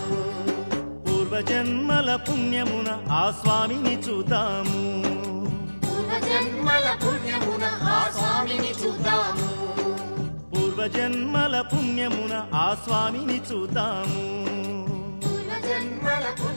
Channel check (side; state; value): both; inverted; correlation -1.00